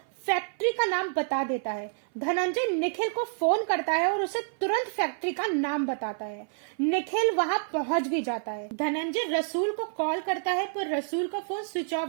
फैक्ट्री का नाम बता देता है। धनंजय निखिल को फोन करता है और उसे तुरंत फैक्ट्री का नाम बताता है। निखिल वहां पहुंच भी जाता है। धनंजय रसूल को कॉल करता है पर रसूल का फोन स्विच ऑफ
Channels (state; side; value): silent; left; 57 dB below the other